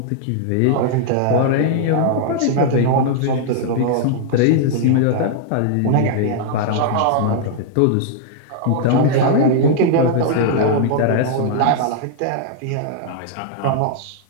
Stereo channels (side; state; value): both; different; correlation -0.01